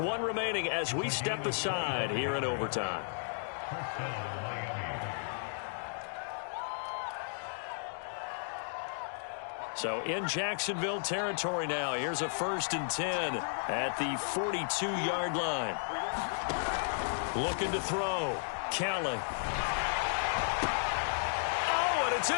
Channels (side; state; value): right; silent; digital silence